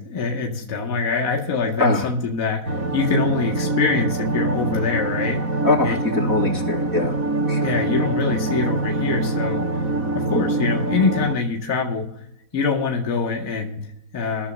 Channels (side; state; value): left; late; 4.1 ms